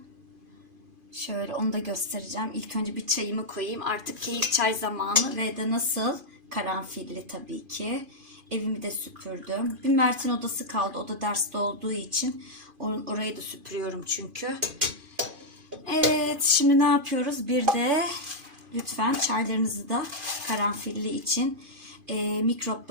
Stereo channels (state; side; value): late; left; 2.5 ms